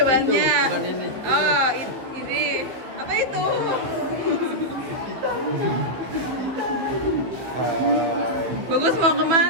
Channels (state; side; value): late; left; 15 ms